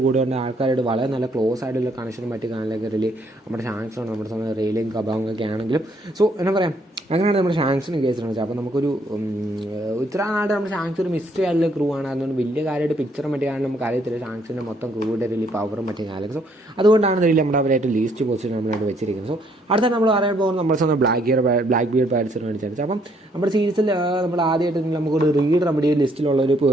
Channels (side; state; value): both; normal; correlation 0.68